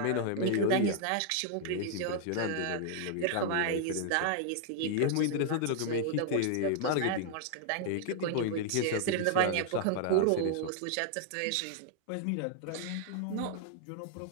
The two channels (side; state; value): both; different; correlation -0.01